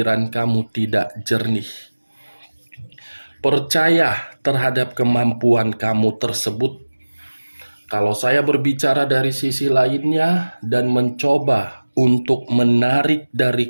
kamu tidak jernih. Percaya terhadap kemampuan kamu tersebut. Kalau saya berbicara dari sisi lainnya dan mencoba untuk menarik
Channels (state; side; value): inverted; both; correlation -1.00